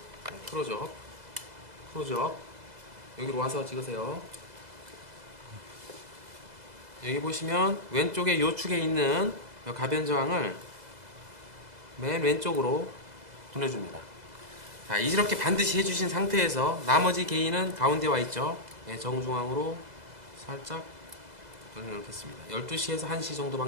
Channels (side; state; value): left; late; 2.0 ms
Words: 크로적 여기로 와서 찍으세요. 여기 보시면 왼쪽에 요축에 있는 가변저항을 맨 왼쪽으로 돌려줍니다. 자, 이렇게 반드시 해주신 상태에서 나머지 게인은 가운데 와 있죠. 정중앙으로 살짝 돌려놓겠습니다. 12시에서 1시 정도